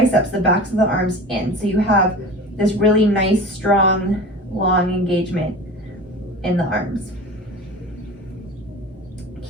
the backs of the arms in, so you have this really nice, strong, long engagement in the arms.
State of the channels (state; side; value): normal; both; correlation 0.35